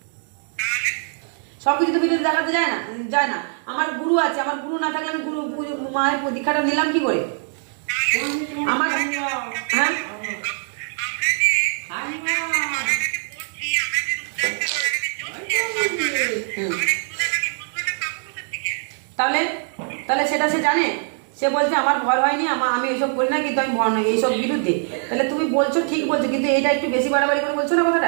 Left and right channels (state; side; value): silent; left; 57 dB below the other